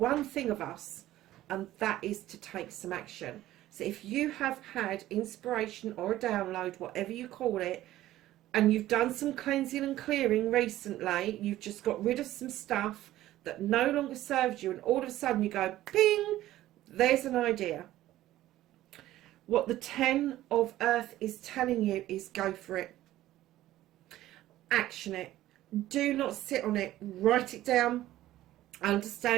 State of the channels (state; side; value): quieter; left; 14.7 dB